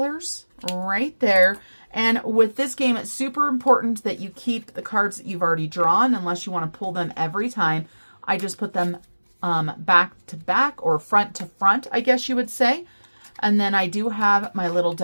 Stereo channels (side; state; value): both; inverted; correlation -1.00